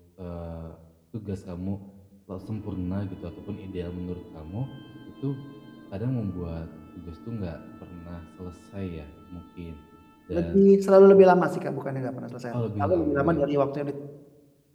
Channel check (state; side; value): identical; both; correlation 1.00